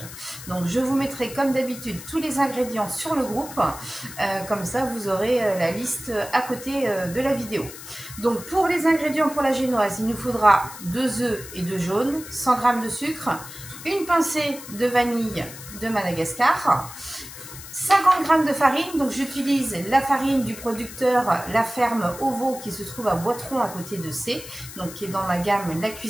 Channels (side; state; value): left; noise; hiss, 14 dB below the sound